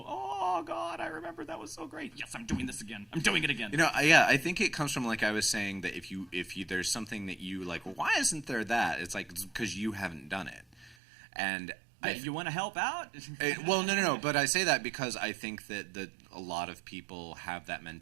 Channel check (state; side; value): drops out; left; at 11.0 s